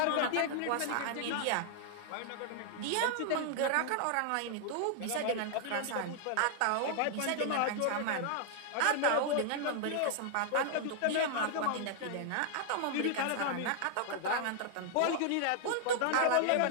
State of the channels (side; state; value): both; different; correlation 0.00